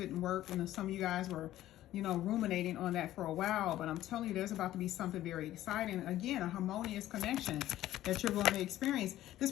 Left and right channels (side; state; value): right; quieter; 13.9 dB